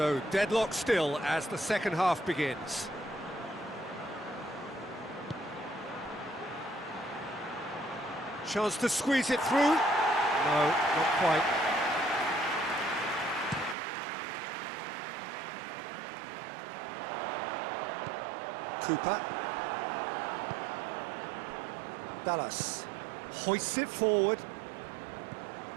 deadlock still as the second half begins. Chance to squeeze it through. No, not quite. Cooper. Dallas hoists it forward.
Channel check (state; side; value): drops out; left; at 13.8 s